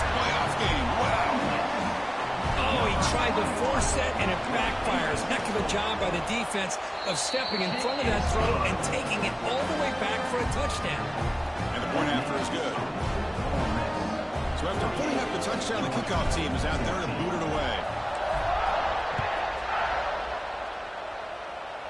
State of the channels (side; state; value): both; identical; correlation 1.00